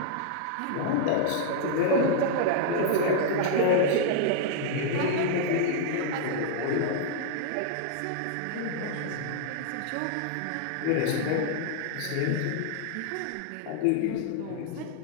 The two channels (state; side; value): different; both; correlation -0.01